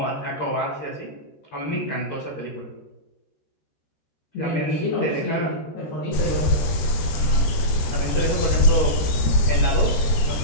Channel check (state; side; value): late; right; 14 ms